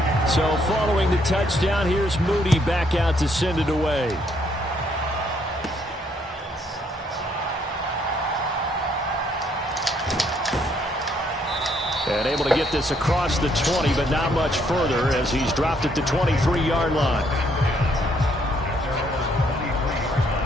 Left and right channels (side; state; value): both; normal; correlation 0.70